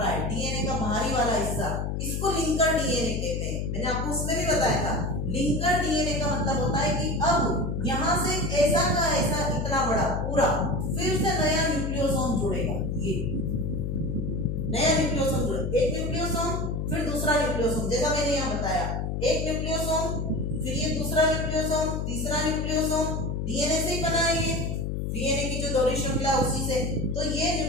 है डीएनए का बाहरी वाला हिस्सा, इसको लिंकर डीएनए कहते हैं। मैंने आपको उसमें भी बताया था, लिंकर डीएनए का मतलब होता है कि अब यहाँ से ऐसा का ऐसा इतना बड़ा पूरा फिर से नया न्यूक्लियोसोम जुड़ेगा। ये नया न्यूक्लियोसोम जुड़ेगा, एक न्यूक्लियोसोम फिर दूसरा न्यूक्लियोसोम, जैसा मैंने यहाँ बताया, एक न्यूक्लियोसोम फिर ये दूसरा न्यूक्लियोसोम, तीसरा न्यूक्लियोसोम, डीएनए से ही बना है ये, डीएनए की जो दोहरी श्रृंखला उसी से। तो ये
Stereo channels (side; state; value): left; noise; hum, 2 dB below the sound